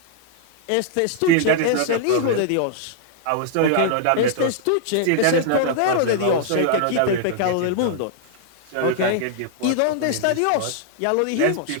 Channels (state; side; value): different; both; correlation -0.01